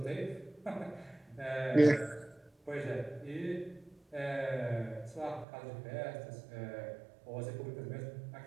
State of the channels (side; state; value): left; drops out; at 5.5 s